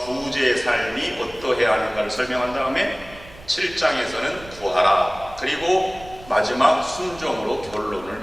삶이 어떠해야 하는가를 설명한 다음에 7장에서는 구하라, 그리고 마지막 순종으로 결론을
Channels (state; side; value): noise; right; rumble, 20 dB below the sound